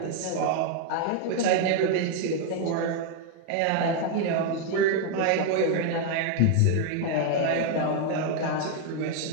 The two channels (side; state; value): both; different; correlation 0.00